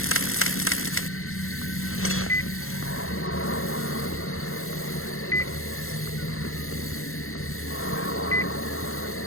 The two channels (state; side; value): late; right; 0.61 ms